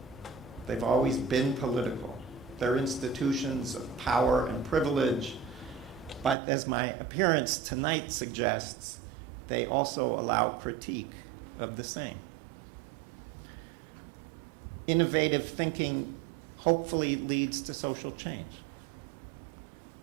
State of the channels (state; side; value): drops out; left; at 6.4 s